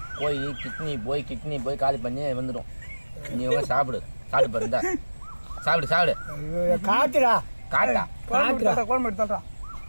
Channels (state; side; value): inverted; both; correlation -1.00